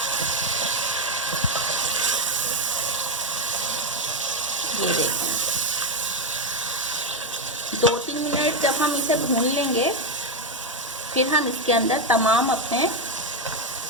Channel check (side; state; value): both; normal; correlation 0.07